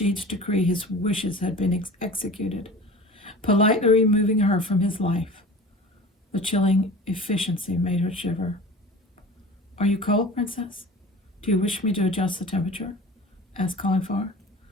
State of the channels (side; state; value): both; normal; correlation 0.39